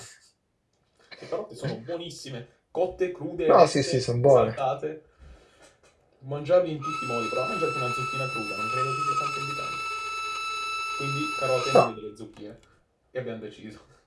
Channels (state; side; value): identical; both; correlation 1.00